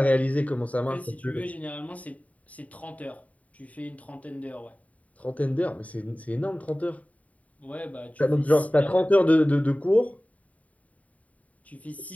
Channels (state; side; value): late; right; 0.069 ms